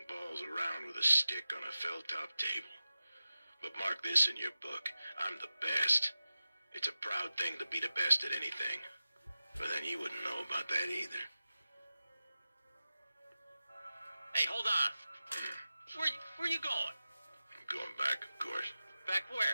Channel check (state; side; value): inverted; both; correlation -0.94